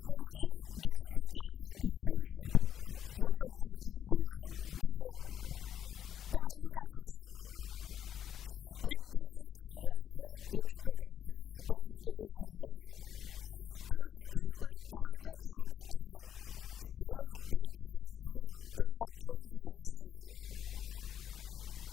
politique d'exploitation qui souffre, me dis bien, qui souffre de conflits d'intérêts. Il n'y a pas une exploitation dans l'intérêt général. Parce qu'il y a un traité qu'ils ont tapé signé, il n'y a pas de nature partenariale.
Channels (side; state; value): right; quieter; 9.5 dB